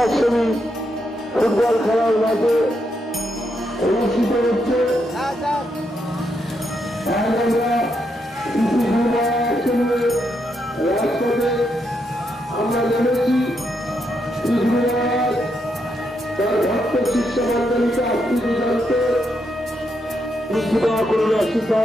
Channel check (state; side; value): normal; both; correlation 0.80